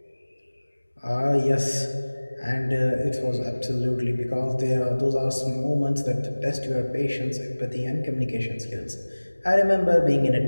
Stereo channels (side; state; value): both; inverted; correlation -1.00